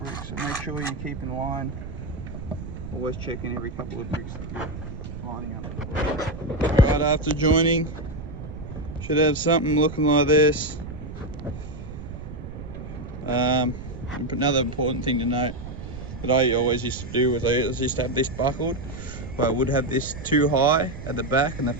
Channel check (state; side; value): noise; right; rumble, 10 dB below the sound